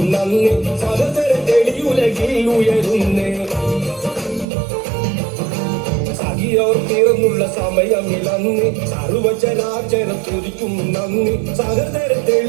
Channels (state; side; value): drops out; left; at 4.5 s